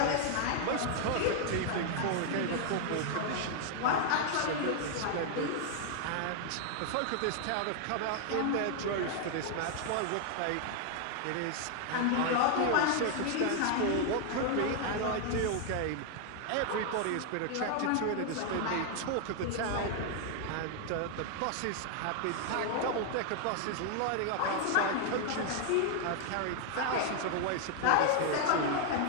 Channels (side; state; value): both; different; correlation 0.00